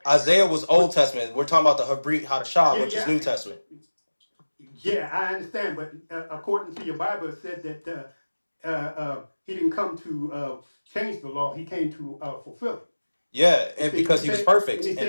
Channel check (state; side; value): inverted; both; correlation -1.00